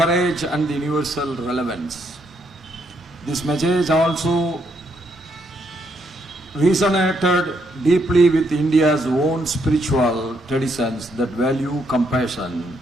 and universal relevance. This message also resonated deeply with India's own spiritual traditions that value compassion,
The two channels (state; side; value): normal; both; correlation 0.74